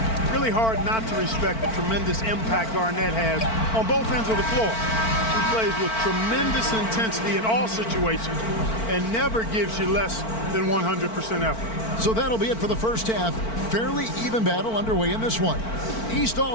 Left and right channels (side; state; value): right; late; 4.5 ms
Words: Really hard not to respect the tremendous impact Garnett has on both ends of the floor. He plays with tremendous intensity in all situations and never gives you less than 100% effort. So that'll be it for the first half. Fairly even battle underway in this one. East